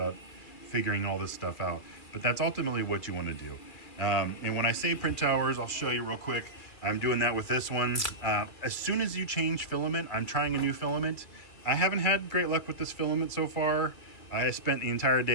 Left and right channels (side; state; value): right; late; 2.4 ms